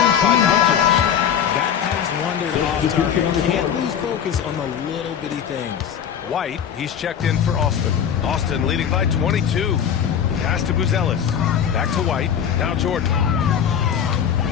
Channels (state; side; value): quieter; right; 8.5 dB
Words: by Doncic. That pass wandered off target. Can't lose focus on the little bitty things. White, he's checked in for Austin. Austin leading by 22. Pass to Buzelis. Back to White. Now Jordan.